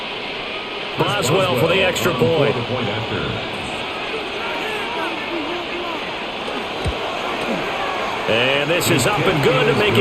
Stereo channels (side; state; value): both; identical; correlation 1.00